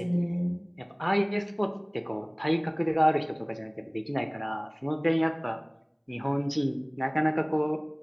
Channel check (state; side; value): identical; both; correlation 1.00